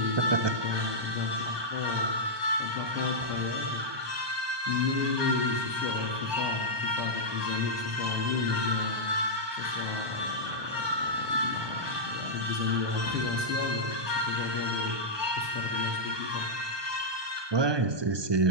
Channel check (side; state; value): left; late; 1.2 ms